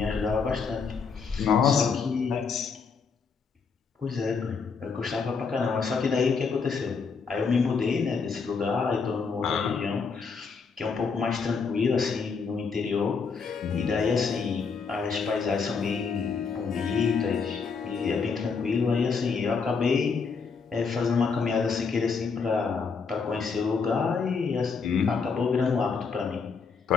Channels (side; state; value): right; quieter; 5.3 dB